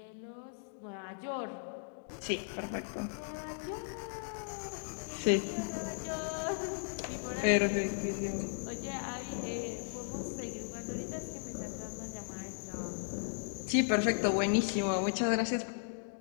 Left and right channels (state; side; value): silent; right; digital silence